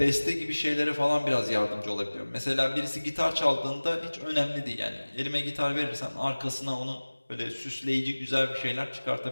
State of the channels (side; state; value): both; inverted; correlation -1.00